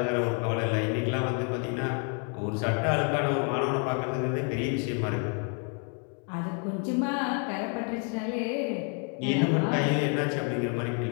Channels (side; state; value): right; quieter; 39.8 dB